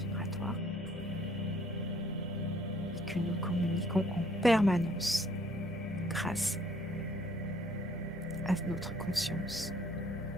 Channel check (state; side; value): normal; both; correlation 0.62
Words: et que nous communiquons en permanence grâce à notre conscience.